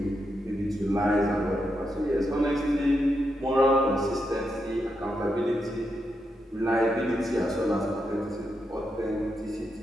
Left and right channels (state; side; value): normal; both; correlation 0.84